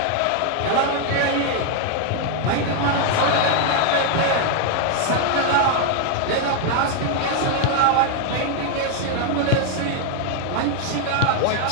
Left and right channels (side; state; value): both; different; correlation 0.00